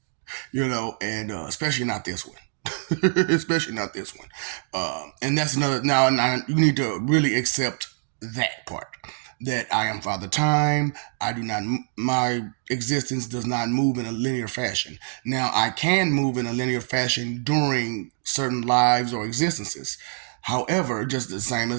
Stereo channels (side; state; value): left; silent; 62 dB below the other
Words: And especially not this one. Especially not this one. And that's another. Now, you need to really accept that part. That I am Father Time. I do not. My existence does not move in a linear fashion. Now, I can move in a linear fashion during certain lives or existences. However, just the same